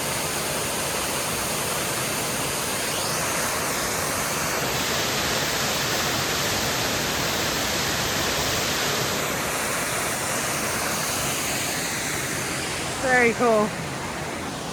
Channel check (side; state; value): both; identical; correlation 1.00